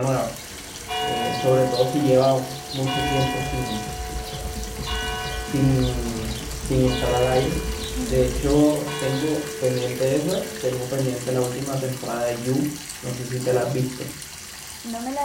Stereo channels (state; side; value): identical; both; correlation 1.00